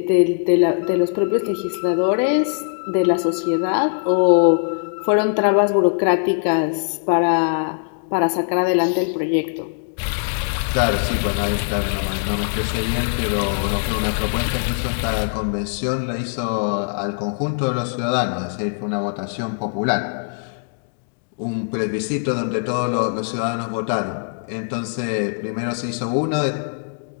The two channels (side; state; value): right; silent; digital silence